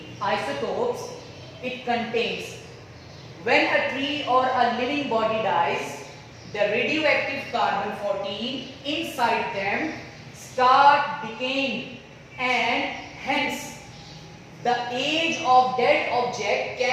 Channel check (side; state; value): both; identical; correlation 1.00